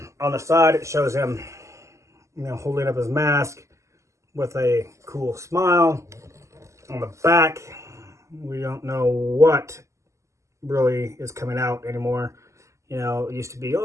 the side, it shows him, holding up his mask with a cool smile. On the back, we don't know what really is coming out anymore. You know, it used to be,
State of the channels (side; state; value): left; late; 0.14 ms